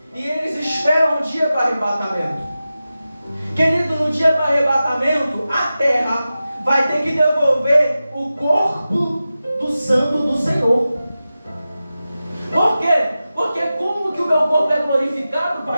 e eles esperam o dia do arrebatamento. Querido, no dia do arrebatamento, a terra vai ter que devolver o corpo do santo do Senhor. Por quê? Porque como que o meu corpo é glorificado,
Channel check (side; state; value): both; inverted; correlation -0.94